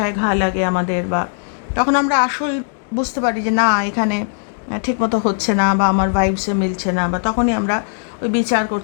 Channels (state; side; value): silent; right; digital silence